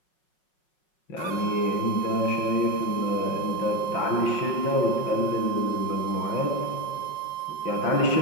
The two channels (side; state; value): right; late; 5.5 ms